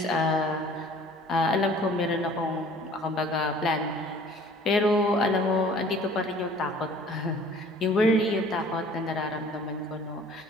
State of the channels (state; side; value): normal; both; correlation 0.51